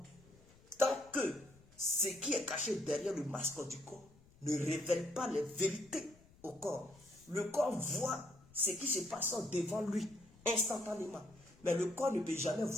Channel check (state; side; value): noise; left; rumble, 26 dB below the sound